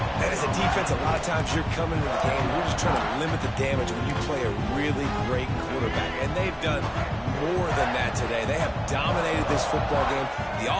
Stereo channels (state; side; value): identical; both; correlation 1.00